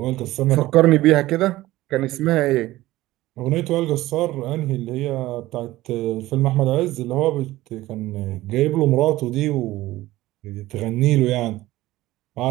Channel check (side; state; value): left; quieter; 16.9 dB